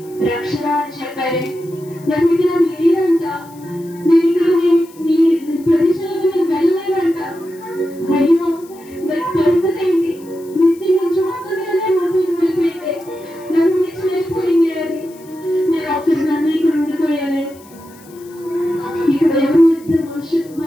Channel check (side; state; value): left; noise; hiss, 25 dB below the sound